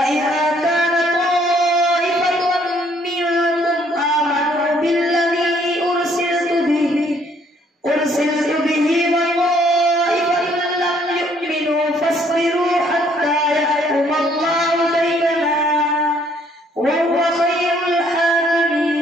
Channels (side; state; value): both; normal; correlation 0.64